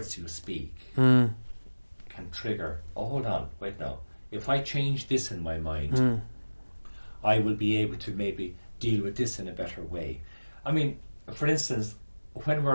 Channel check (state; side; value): inverted; both; correlation -1.00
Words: you speak can trigger, oh, hold on, wait now. If I change this in my mind, I will be able to maybe deal with this in a better way. I mean, for instance, when